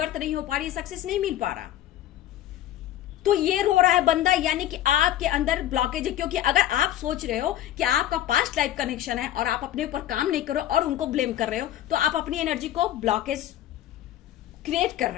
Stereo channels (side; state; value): right; quieter; 12.6 dB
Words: नहीं हो पा रही, सक्सेस नहीं मिल पा रहा। तो ये रो रहा है बंदा, यानी कि आपके अंदर ब्लॉकेज है। क्योंकि अगर आप सोच रहे हो कि आपका पास्ट लाइफ कनेक्शन है और आप अपने ऊपर काम नहीं कर रहे हो और उनको ब्लेम कर रहे हो, तो आप अपनी एनर्जी को ब्लॉकेज क्रिएट कर